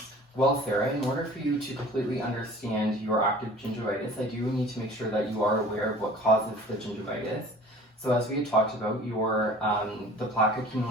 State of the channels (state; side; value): normal; both; correlation 0.45